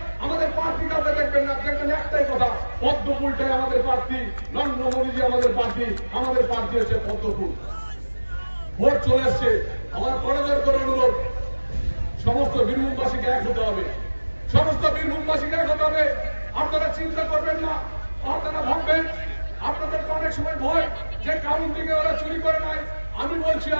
আমাদের প্রার্থী কাছে দেখবেন না, দেখবেন একটাই কথা, পদ্মফুলটাই আমাদের প্রার্থী, নরেন্দ্র মোদীজি আমাদের প্রার্থী, আমাদের প্রার্থী হচ্ছে পদ্মফুল। ভোট চলে এসছে, আমার করজোর করে অনুরোধ, সমস্ত বীরভূমবাসীকে এক হতে হবে, সমস্ত বীরভূমবাসীকে এক হতে হবে। আপনারা চিন্তা করবেন না, আপনারা ভাববেন আপনাদের অনেক সময় ভয় যে কাউন্টিংয়ে ওরা চুরি করে নাই। আমি বলছি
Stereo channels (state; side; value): inverted; both; correlation -1.00